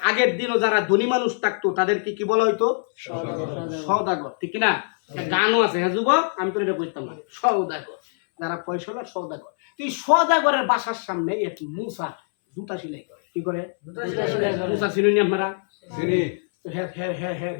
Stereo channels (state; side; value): silent; right; 63 dB below the other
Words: আগের দিনও যারা ধনী মানুষ থাকতো তাদেরকে কি বলা হইতো? সওদাগর, ঠিক কিনা? গানও আছে, হ্যাঁ যুবক, আমি তো এটা বুঝতাম না। সওদাগর, যারা পয়সাওয়ালা সওদাগর। এই সওদাগরের বাসার সামনে এক মুসা জুতা সেলাই করে। কি করে? মুসা চিনুন আপনারা?